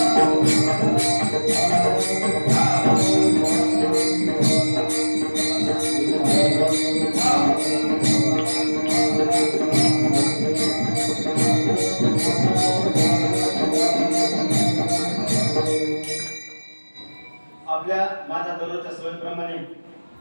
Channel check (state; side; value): inverted; both; correlation -1.00